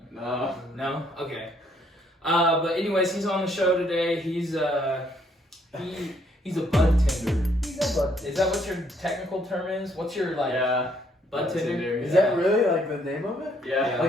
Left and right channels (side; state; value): both; normal; correlation 0.68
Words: No. No? Okay. But anyways, he's on the show today. He's a bud tender. He's a bud. Is that what your technical term is? What's your like Yeah. bud tender? Is that really like the name of it? Yeah.